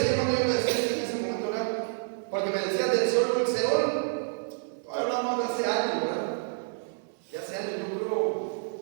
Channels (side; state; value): left; silent; 59 dB below the other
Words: hermano, yo le decía en ese momento, ¿verdad? Porque me decía del Seol, el Seol. Hablamos de hace años, ¿verdad? De hace años, yo creo,